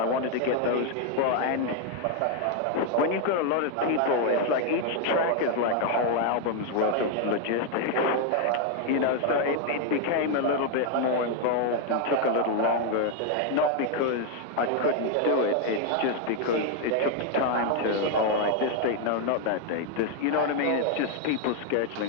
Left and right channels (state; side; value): different; both; correlation 0.00